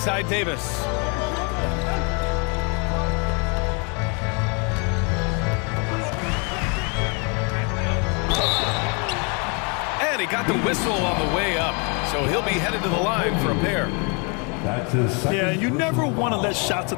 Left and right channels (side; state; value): right; quieter; 34.2 dB